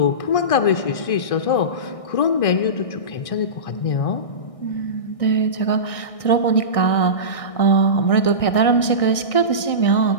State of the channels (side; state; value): right; late; 1.6 ms